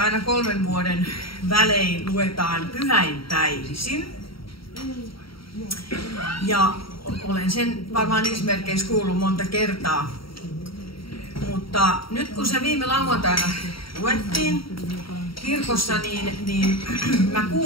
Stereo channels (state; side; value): late; right; 0.74 ms